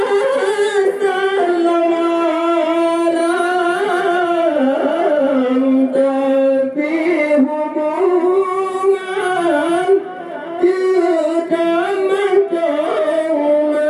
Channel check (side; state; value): both; identical; correlation 1.00